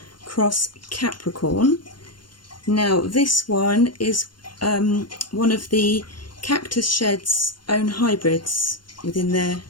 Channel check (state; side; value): late; right; 0.72 ms